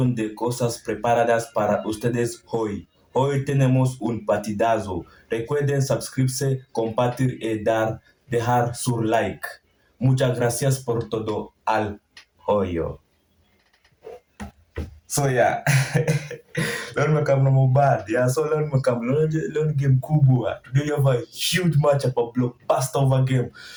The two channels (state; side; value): identical; both; correlation 1.00